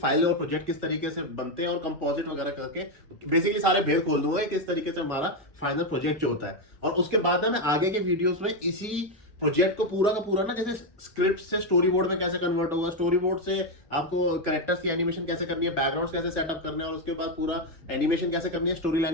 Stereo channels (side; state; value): both; normal; correlation 0.06